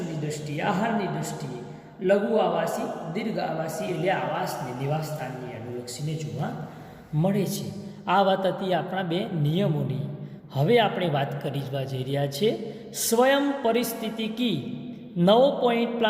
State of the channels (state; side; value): identical; both; correlation 1.00